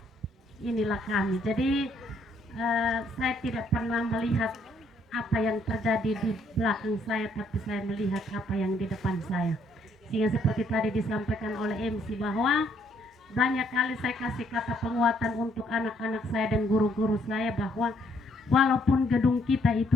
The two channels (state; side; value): normal; both; correlation 0.69